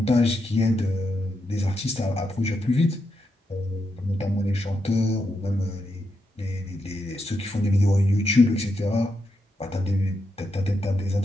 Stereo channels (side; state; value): both; normal; correlation 0.83